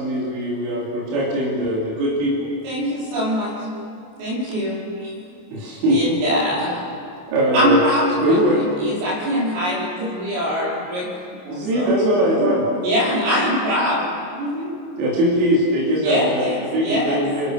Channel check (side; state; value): left; late; 28 ms